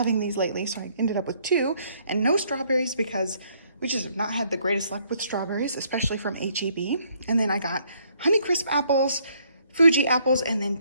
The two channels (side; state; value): both; inverted; correlation -0.67